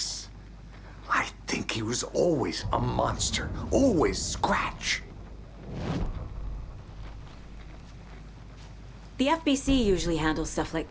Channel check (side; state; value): both; identical; correlation 1.00